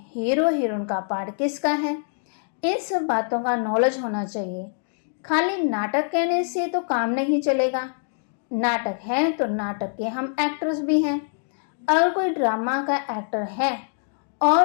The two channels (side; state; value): right; silent; digital silence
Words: हीरो हीरोइन का पार्ट किसका है, इन सब बातों का नॉलेज होना चाहिए। खाली नाटक कहने से तो काम नहीं चलेगा। नाटक है तो नाटक के हम एक्टर्स भी हैं। अगर कोई ड्रामा का एक्टर है